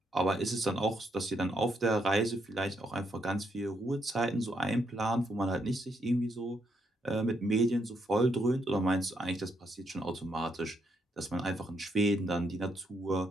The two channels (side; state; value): both; normal; correlation 0.77